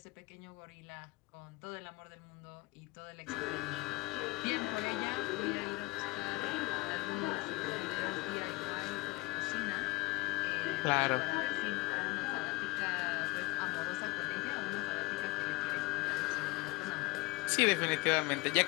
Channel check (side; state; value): right; quieter; 23.0 dB